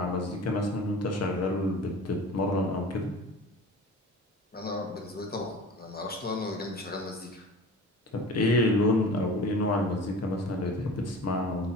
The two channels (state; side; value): normal; both; correlation 0.39